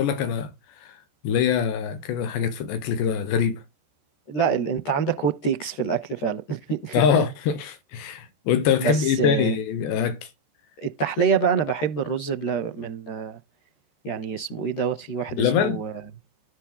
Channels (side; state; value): right; late; 13 ms